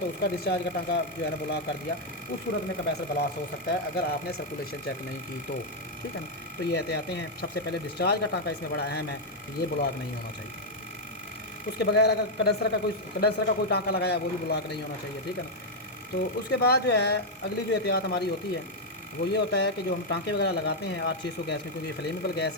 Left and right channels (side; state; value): both; normal; correlation -0.01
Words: उसका डिस्चार्ज का टाँका जो है ना ब्लॉक कर दिया, उस सूरत में कंप्रेसर ब्लास्ट हो सकता है अगर आपने सर्कुलेशन चेक नहीं की तो। ठीक है ना। तो ये एहतियातें हैं। सबसे पहले डिस्चार्ज का टाँका इसमें बड़ा अहम है, ये ब्लॉक नहीं होना चाहिए। उसके बगैर अगर कंडेंसर का कोई टाँका लगाया, वो भी ब्लॉक नहीं होना चाहिए। ठीक है ना। तो उसके बाद जो है अगली जो एहतियात हमारी होती है वो ये होता है कि जो हम टाँके वगैरह लगाते हैं R600 गैस में, क्योंकि ये फ्लेमेबल